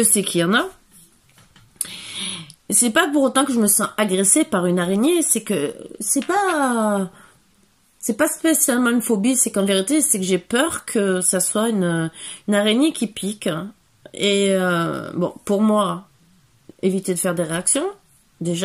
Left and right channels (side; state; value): both; identical; correlation 1.00